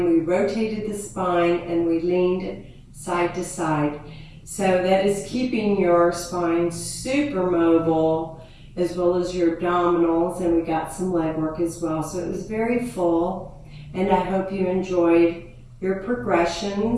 we rotated the spine, and we leaned side to side. So that is keeping your spine super mobile, as well as your abdominals, and we got some leg work as well. So it was very full, and I hope you enjoyed your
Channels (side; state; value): both; identical; correlation 1.00